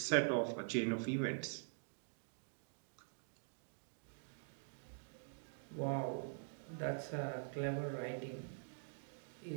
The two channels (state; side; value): silent; left; digital silence